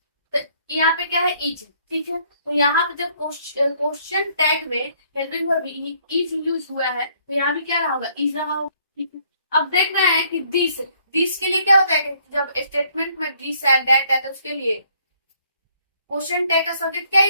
तो यहाँ पे क्या है इज, ठीक है। तो यहाँ पे जब क्वेश्चन टैग में हेल्पिंग वर्ब इज यूज हुआ है तो यहाँ भी क्या रहा होगा, इज रहा होगा, ठीक है। अब देख रहे हैं कि दिस के लिए क्या होता है कि जब स्टेटमेंट में दिस है दैट है तो उसके लिए क्वेश्चन टैग का सब्जेक्ट क्या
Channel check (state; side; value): inverted; both; correlation -0.65